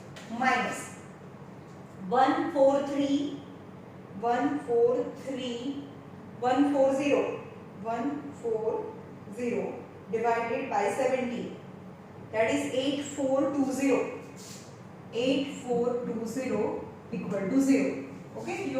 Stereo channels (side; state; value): both; identical; correlation 1.00